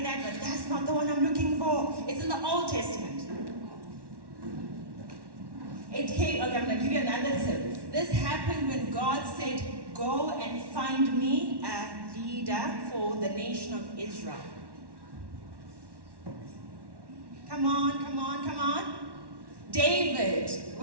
that, but that's not the one I'm looking for. It's in the Old Testament. Okay, I'm going to give you another tip. This happened when God said, go and find me a leader for the nation of Israel. Come on, come on, come on. David,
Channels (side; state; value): left; late; 1.1 ms